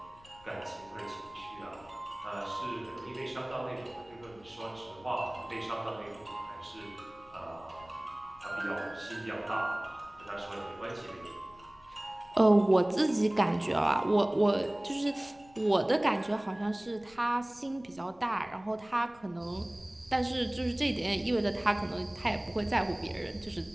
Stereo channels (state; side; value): noise; left; rumble, 26 dB below the sound